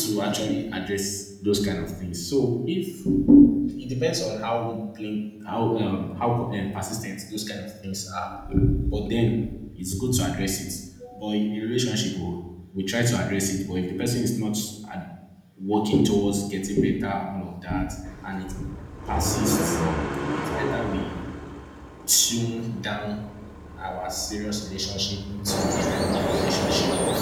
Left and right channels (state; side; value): identical; both; correlation 1.00